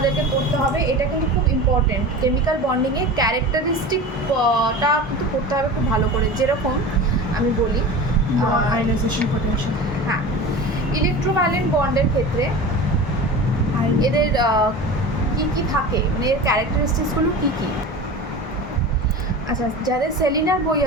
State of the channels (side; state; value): both; normal; correlation 0.33